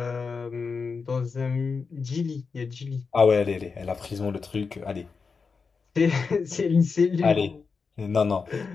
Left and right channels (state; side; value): quieter; right; 5.0 dB